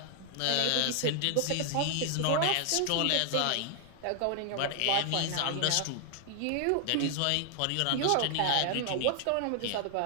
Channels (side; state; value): both; different; correlation 0.00